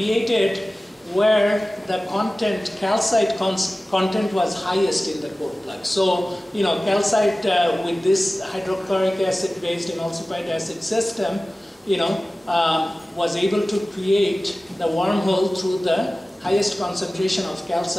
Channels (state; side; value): normal; both; correlation 0.97